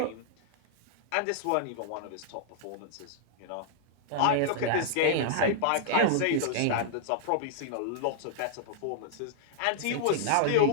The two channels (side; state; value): both; different; correlation -0.01